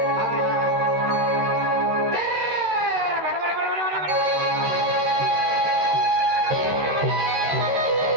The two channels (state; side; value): late; left; 13 ms